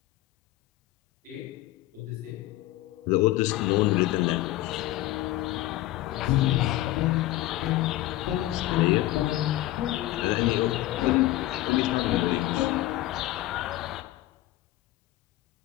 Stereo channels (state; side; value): quieter; right; 16.2 dB